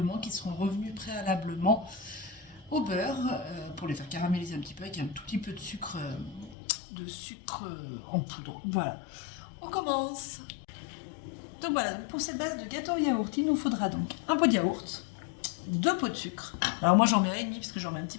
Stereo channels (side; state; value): right; drops out; at 6.6 s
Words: qui seront revenus préalablement au beurre pour les faire caraméliser un petit peu avec un tout petit peu de sucre en poudre. Voilà, on commence. Donc voilà, pour cette base de gâteau au yaourt, il nous faudra donc un pot de yaourt, 2 pots de sucre. Alors moi j'en mets un et demi parce que j'en mets un petit